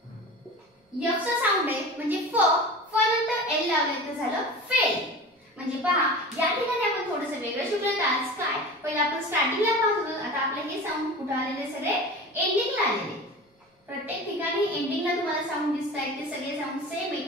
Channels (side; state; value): both; normal; correlation 0.34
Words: आपण स्टार्टिंगला पाहत होतो, आता आपले हे साऊंड कुठे आलेले सगळे एंडिंगला आलेले. प्रत्येक ठिकाणी एंडिंगला तुम्हाला साऊंड दिसतायत, ते सगळे साऊंड सेम आहेत.